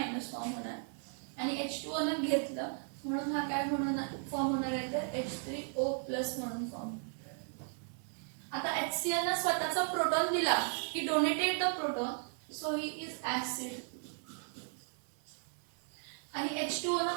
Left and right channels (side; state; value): left; silent; 54 dB below the other